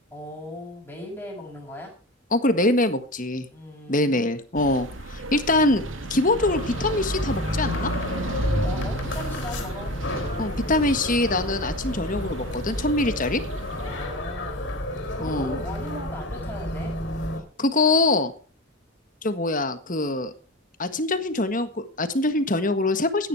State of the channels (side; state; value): both; normal; correlation 0.28